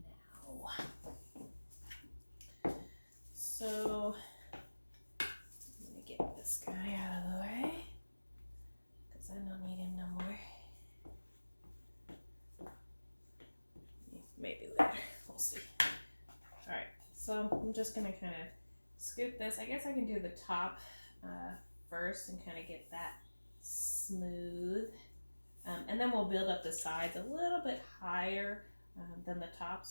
now. So I'm going to get this guy out of the way, because I don't need him no more. Maybe later, we'll see. All right, so I'm just going to kind of scoop this. I guess I can do the top first and kind of get that smooth, and then we'll build up the sides a little bit higher than the top,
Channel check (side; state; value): both; inverted; correlation -1.00